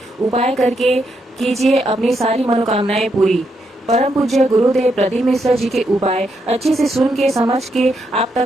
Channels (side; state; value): both; normal; correlation 0.79